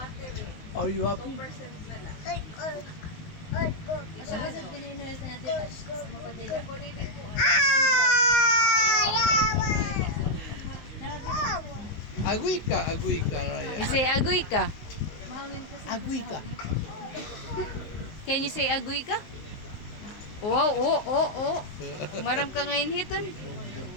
Are you happy? Agoy ka, Raya. You say, agoy ka. Agoy ka. Can you say agoy ka? Oh. Maram ka ngayon hiton.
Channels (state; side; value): late; right; 19 ms